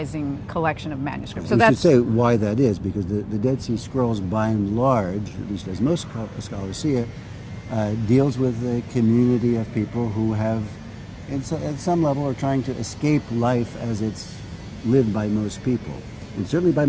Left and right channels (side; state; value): both; identical; correlation 1.00